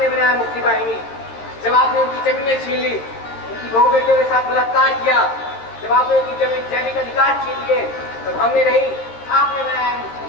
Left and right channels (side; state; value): right; late; 13 ms